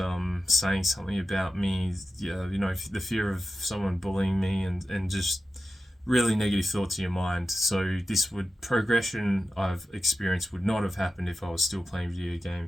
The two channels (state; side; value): normal; both; correlation 0.92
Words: saying something about me, the fear of someone bullying me, and just really negative thoughts in your mind. So progression I've experienced would not have happened if I was still playing video